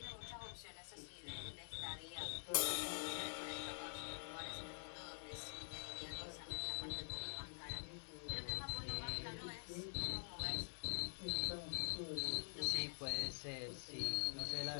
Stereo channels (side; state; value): right; silent; digital silence